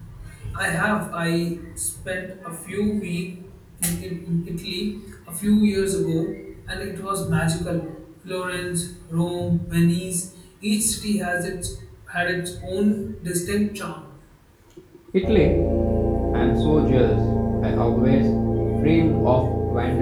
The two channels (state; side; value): identical; both; correlation 1.00